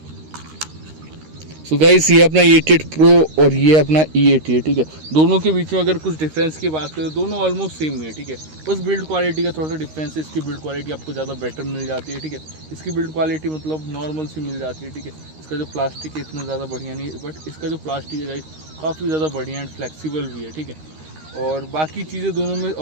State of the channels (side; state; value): left; late; 13 ms